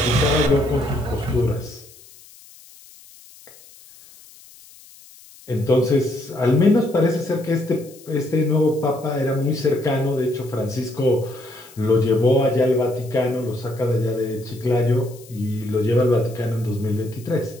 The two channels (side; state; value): left; noise; hiss, 23 dB below the sound